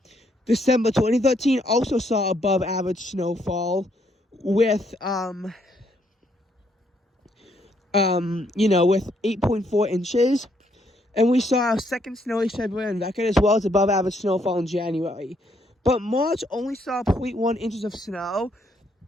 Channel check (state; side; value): normal; both; correlation 0.72